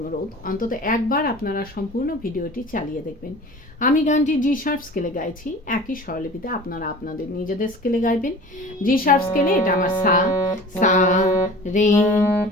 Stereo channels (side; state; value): both; normal; correlation 0.41